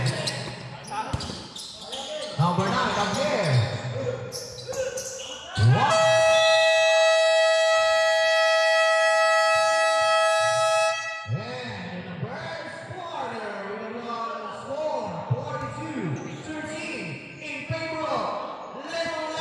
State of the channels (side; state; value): both; identical; correlation 1.00